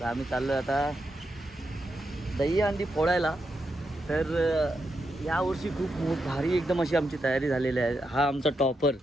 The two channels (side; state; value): both; normal; correlation 0.84